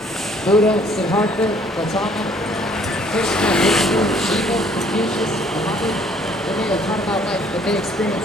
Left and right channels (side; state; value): both; normal; correlation 0.60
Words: Buddha, Siddhartha, Gautama, Krishna, Vishnu, Shiva, Confucius, Muhammad, when they were taught about life, but they